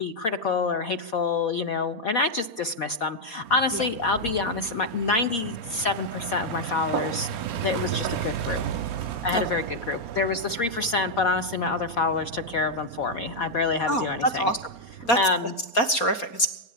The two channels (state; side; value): late; right; 4.3 ms